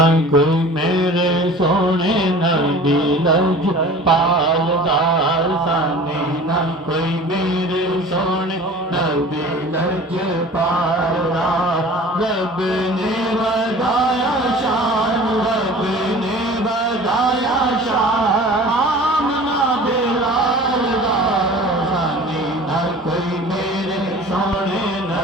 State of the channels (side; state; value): both; normal; correlation 0.42